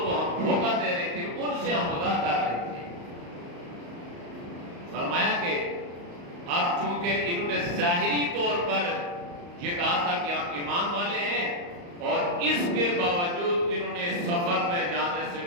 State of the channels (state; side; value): late; left; 35 ms